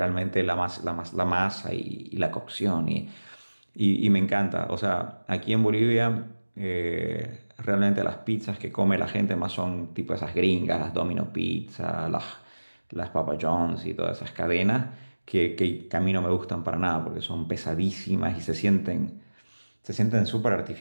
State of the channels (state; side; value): inverted; both; correlation -1.00